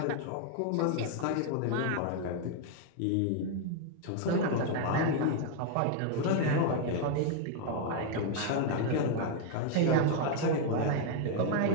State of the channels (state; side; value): different; both; correlation 0.00